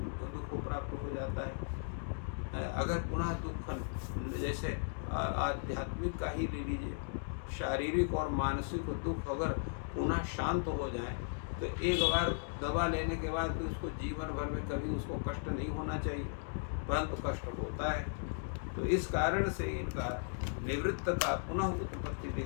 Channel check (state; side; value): silent; right; digital silence